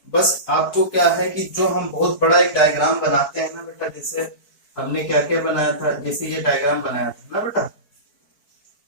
बस आपको क्या है कि जो हम बहुत बड़ा एक डायग्राम बनाते हैं ना बेटा, जैसे हमने क्या क्या बनाया था, जैसे ये डायग्राम बनाया था ना बेटा,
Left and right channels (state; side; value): late; right; 4.5 ms